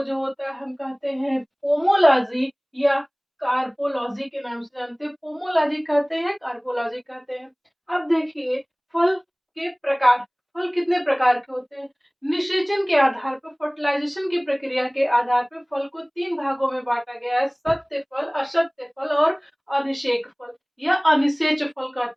जो होता है हम कहते हैं पोमोलॉजी या कार्पोलॉजी के नाम से जानते हैं। पोमोलॉजी कहते हैं, कार्पोलॉजी कहते हैं। अब देखिए फल के प्रकार। फल कितने प्रकार के होते हैं? निषेचन के आधार पर, फर्टिलाइजेशन की प्रक्रिया के आधार पर फल को 3 भागों में बांटा गया है। सत्य फल, असत्य फल और अनिषेक फल या अनिषेच फल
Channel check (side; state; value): both; identical; correlation 1.00